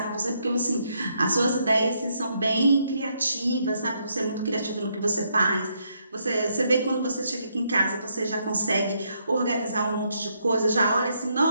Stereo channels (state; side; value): inverted; both; correlation -0.75